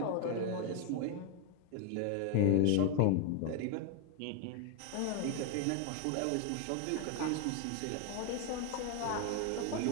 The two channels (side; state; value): both; different; correlation 0.01